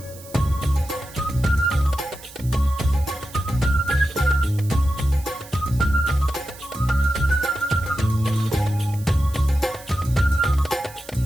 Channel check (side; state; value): right; noise; hiss, 19 dB below the sound